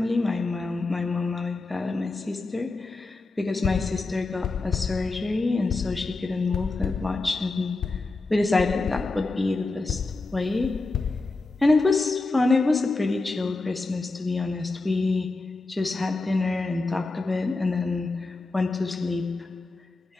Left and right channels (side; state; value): right; quieter; 3.4 dB